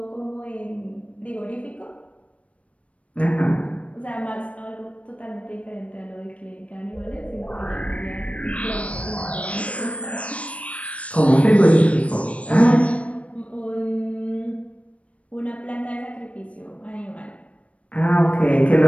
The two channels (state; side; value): late; right; 0.064 ms